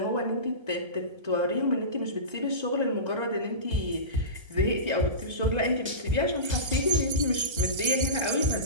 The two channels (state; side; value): late; left; 1.3 ms